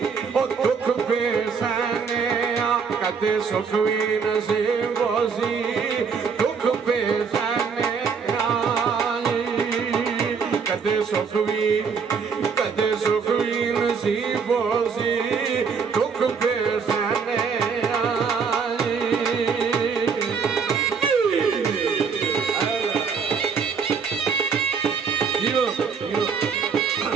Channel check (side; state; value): left; quieter; 5.8 dB